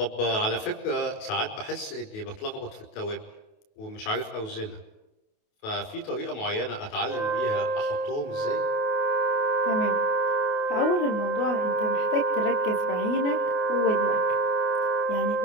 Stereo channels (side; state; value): right; late; 28 ms